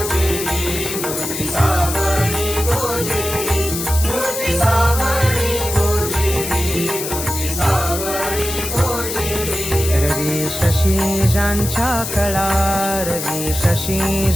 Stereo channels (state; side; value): noise; left; hiss, 5 dB below the sound